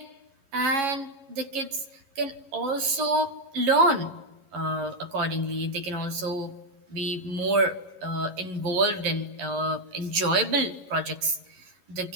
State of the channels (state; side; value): late; left; 11 ms